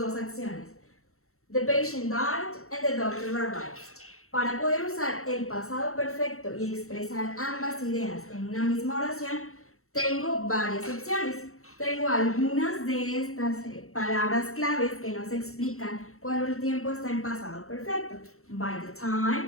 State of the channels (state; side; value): late; right; 0.63 ms